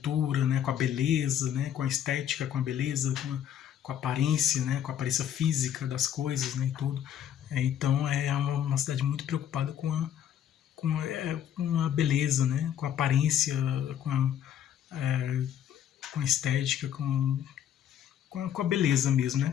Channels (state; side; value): quieter; right; 9.9 dB